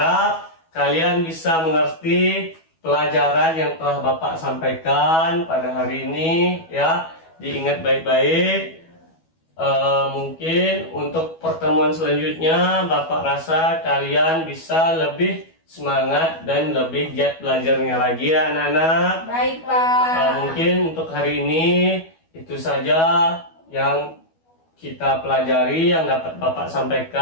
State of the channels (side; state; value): right; late; 12 ms